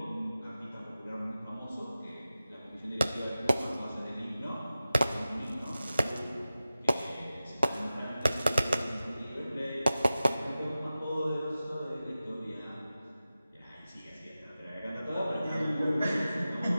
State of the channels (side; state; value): both; inverted; correlation -0.95